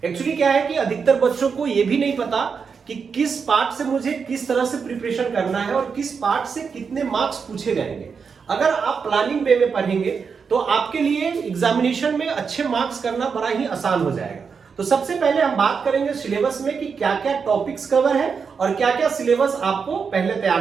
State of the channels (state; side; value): quieter; left; 5.8 dB